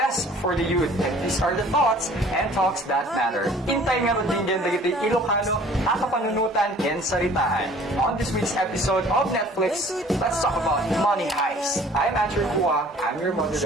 for the youth. And these are the thoughts and talks that matter. Intay nga rin din dagiti Ilocano, akapanunutan and saritaan. On this week's episode of Netflix, let's talk about Money Haist. I'm Ancher Cua. I'm your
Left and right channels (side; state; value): both; normal; correlation 0.51